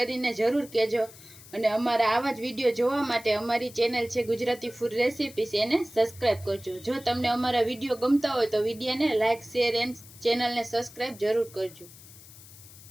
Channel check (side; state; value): left; noise; hiss, 20 dB below the sound